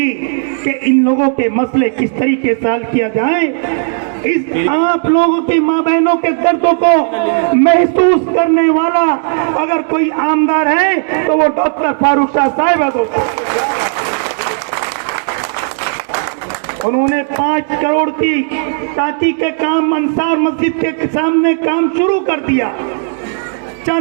कि इन लोगों के मसले किस तरीके से हल किया जाए। इस आप लोगों की माँ बहनों के दर्दों को महसूस करने वाला अगर कोई आमदार है तो वो डॉक्टर फारूक शाह साहब है। दोस्तों उन्होंने 5 करोड़ की टाकी के काम अंसार मस्जिद के सामने काम शुरू कर दिया।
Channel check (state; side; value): silent; left; digital silence